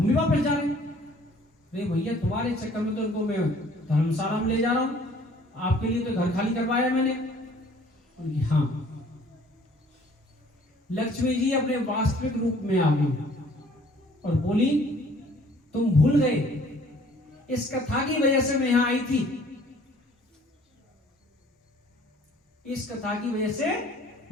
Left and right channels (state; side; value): normal; both; correlation 0.56